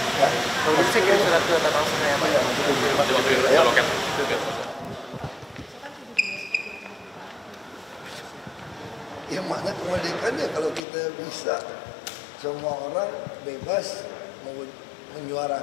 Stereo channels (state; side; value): drops out; right; at 10.9 s